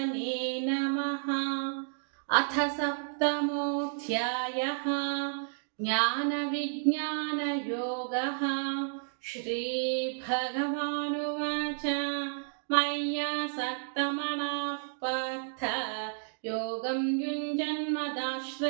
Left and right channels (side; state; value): left; silent; digital silence